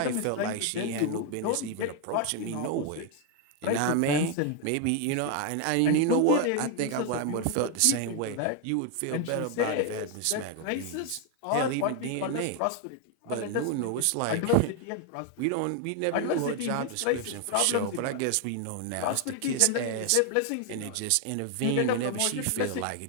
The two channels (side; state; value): both; different; correlation 0.01